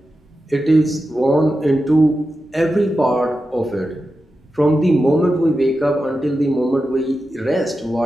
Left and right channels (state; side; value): normal; both; correlation 0.91